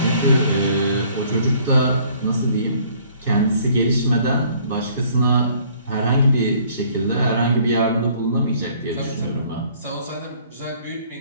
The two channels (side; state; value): both; inverted; correlation -0.58